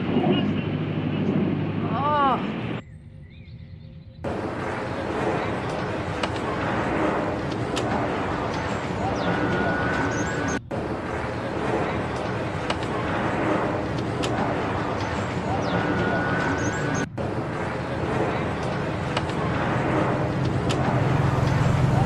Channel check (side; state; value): both; identical; correlation 1.00